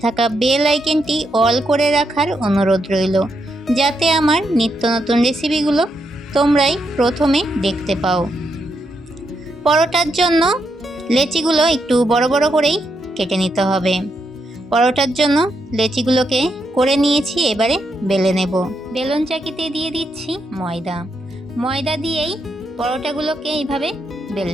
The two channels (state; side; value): normal; both; correlation 0.80